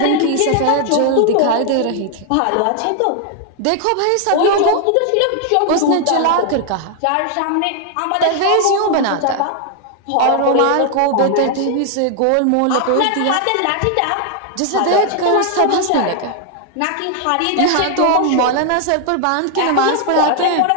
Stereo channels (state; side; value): different; both; correlation 0.00